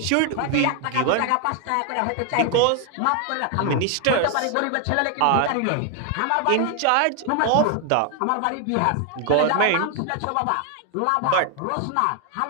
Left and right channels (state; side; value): different; both; correlation 0.01